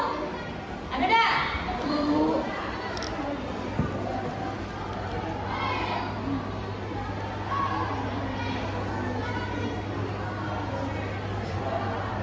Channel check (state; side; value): identical; both; correlation 1.00